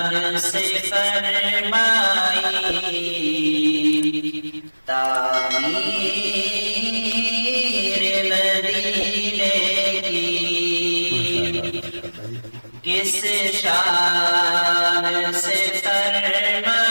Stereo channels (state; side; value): inverted; both; correlation -1.00